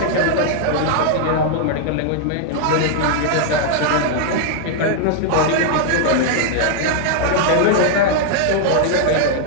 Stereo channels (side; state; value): both; different; correlation -0.01